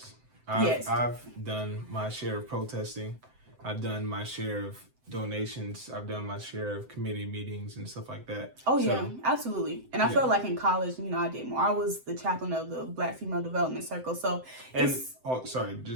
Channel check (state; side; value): late; left; 7.8 ms